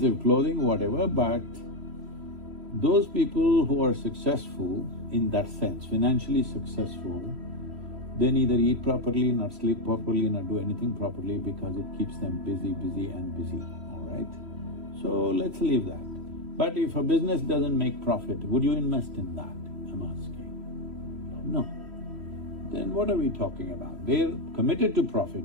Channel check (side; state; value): left; late; 3.0 ms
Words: clothing, whatever, but those people who are successful in that sense, financially successful, they neither eat properly, nor sleep properly, nor do anything properly because it keeps them busy, busy and busy, all right? So let's leave that. But if a business doesn't make profit, would you invest in that? I'm asking. No. Then what are we talking about? They're committed to profit.